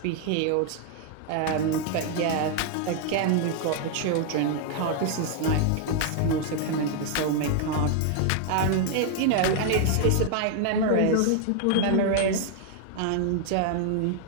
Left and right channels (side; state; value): both; different; correlation 0.00